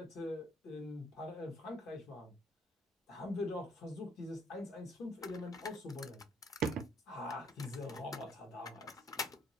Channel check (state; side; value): normal; both; correlation 0.65